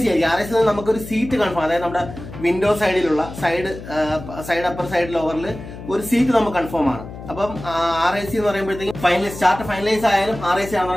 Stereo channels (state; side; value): noise; left; hum, 13 dB below the sound